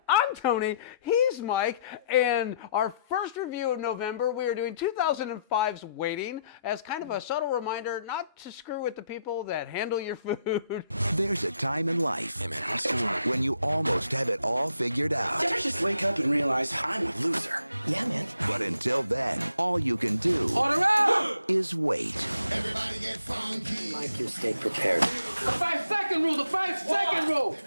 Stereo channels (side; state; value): both; inverted; correlation -0.74